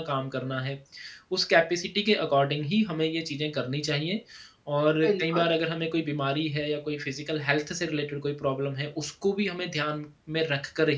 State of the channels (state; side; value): identical; both; correlation 1.00